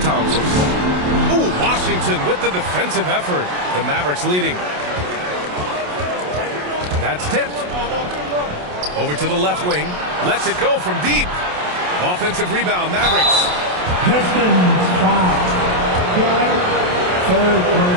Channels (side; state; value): left; late; 28 ms